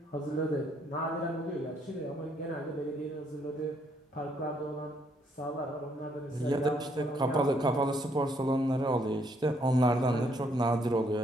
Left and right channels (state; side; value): normal; both; correlation 0.70